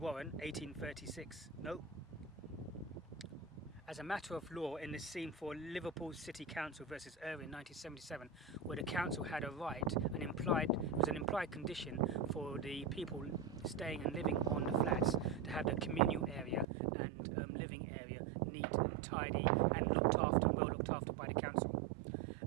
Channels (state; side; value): drops out; left; at 16.7 s